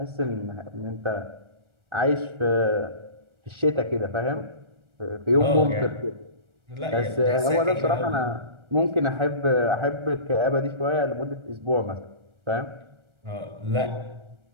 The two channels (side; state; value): left; late; 1.4 ms